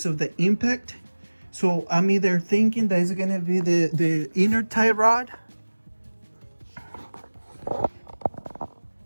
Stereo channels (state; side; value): inverted; both; correlation -1.00